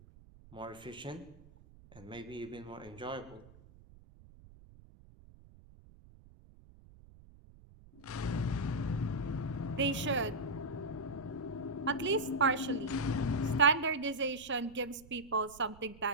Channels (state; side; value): noise; right; rumble, 22 dB below the sound